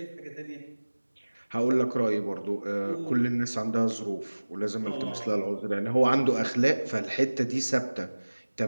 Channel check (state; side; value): inverted; both; correlation -1.00